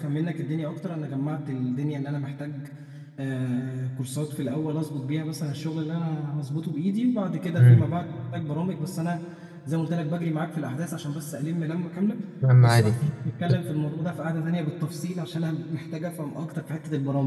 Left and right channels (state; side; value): identical; both; correlation 1.00